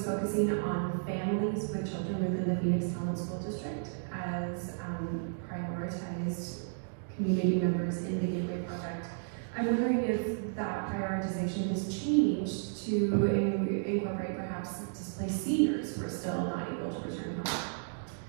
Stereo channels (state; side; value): silent; left; digital silence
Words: focusing on families with children within the Phoenix Town School District as prioritized community members in the Gateway Project. I'm wondering if that prioritization has changed to incorporate perhaps displaced seniors who are still not able to return home.